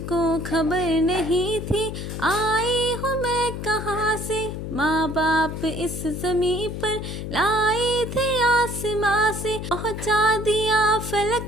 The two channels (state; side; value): noise; left; hum, 6 dB below the sound